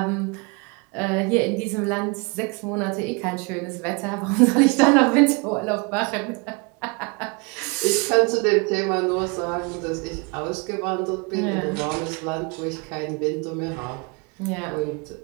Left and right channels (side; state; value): left; quieter; 30.7 dB